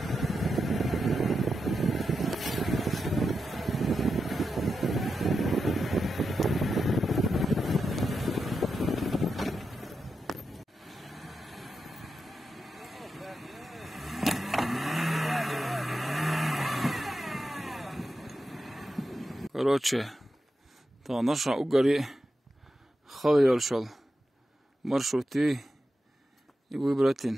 Короче, та наша угори خليل شل مرشوتي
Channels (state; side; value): normal; both; correlation 0.89